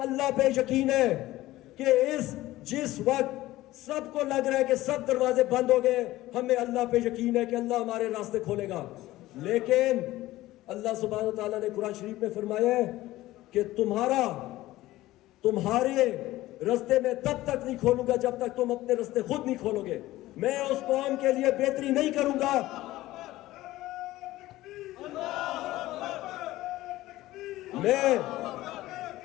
اللہ پہ یقین ہے کہ جس وقت سب کو لگ رہا ہے کہ سب دروازے بند ہو گئے، ہمیں اللہ پہ یقین ہے کہ اللہ ہمارے راستے کھولے گا۔ لیکن اللہ سبحانہ و تعالیٰ نے قرآن شریف میں فرمایا ہے کہ تمہارے راستے میں تب تک نہیں کھولوں گا جب تک تم اپنے راستے خود نہیں کھولو گے۔ میں اس قوم کے لیے بہتری نہیں کروں گا۔ میں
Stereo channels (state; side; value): quieter; right; 16.7 dB